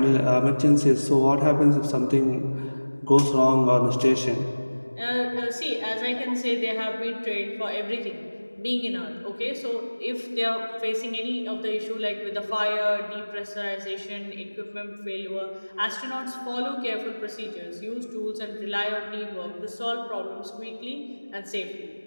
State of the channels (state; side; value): inverted; both; correlation -1.00